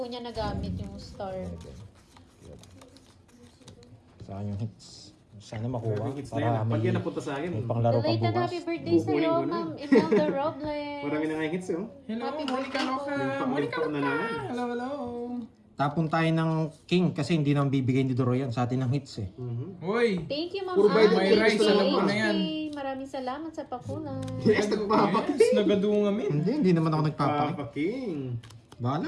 niya nagamit yung Star. 7. Saan yung hits? Sana makuha. Hits na yan. Para Pag yan may, napunta sa akin. may panglaro pa Belated bukas. happy birthday Kukunin sa'yo, ko na. Ma'am Imelda Robles. Marami na nga yung hits eh. Hello, Happy Monica birthday Loca. po. Monica Limpo na Loca. naman. Hello, hello. Tapon tayo ng king kasi hindi naman bibigay ni Doro yan sa atin ng hits eh. Uy. Thank you, Ma'am Puro bayad may Ann. rice, Thank you, alam ko na HK. yan. Maraming salamat sa pakulay. Yes, nagpapaking. Yes, nagadungamin. Hindi naman ako nagpapaki. Papaking. Bahala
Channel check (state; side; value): identical; both; correlation 1.00